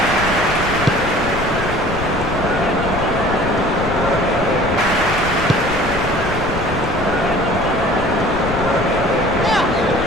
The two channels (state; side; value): noise; left; rumble, 9 dB below the sound